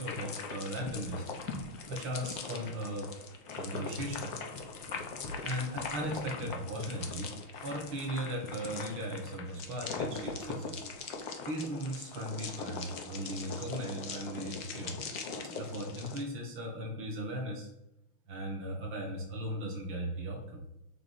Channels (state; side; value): late; left; 5.6 ms